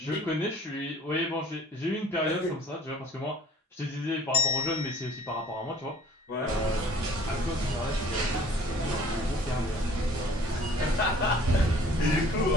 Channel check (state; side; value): normal; both; correlation 0.51